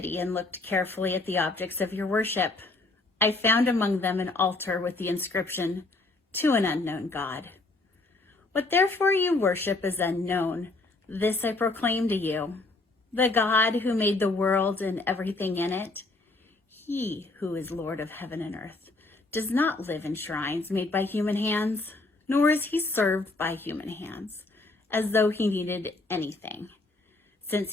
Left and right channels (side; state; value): right; quieter; 3.2 dB